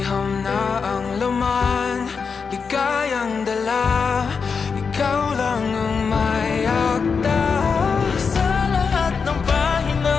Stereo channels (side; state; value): right; quieter; 5.5 dB